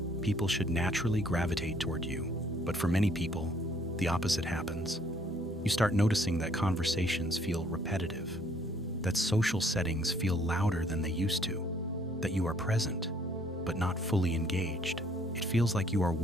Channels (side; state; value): both; normal; correlation 0.63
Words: people should naturally gravitate toward you. But for many people, the opposite happens. You start noticing that conversations feel repetitive, that social settings feel louder than they used to, that you are present, but not fully engaged. It feels like you are